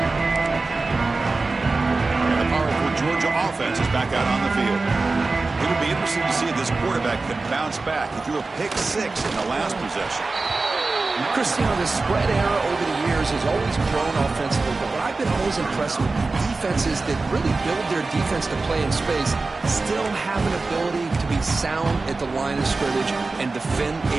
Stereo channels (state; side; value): quieter; left; 3.6 dB